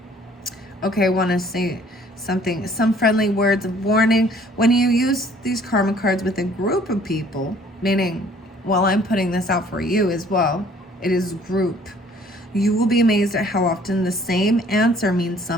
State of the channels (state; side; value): normal; both; correlation 0.57